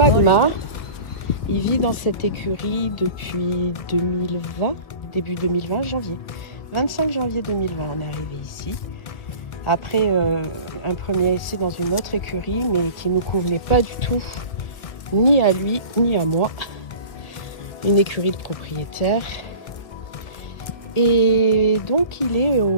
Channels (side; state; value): right; late; 1.6 ms